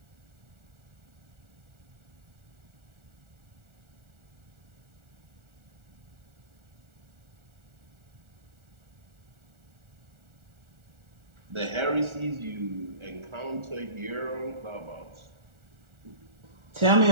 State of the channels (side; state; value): left; late; 1.4 ms